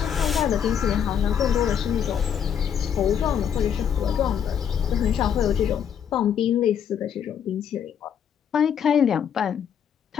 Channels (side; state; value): right; quieter; 8.3 dB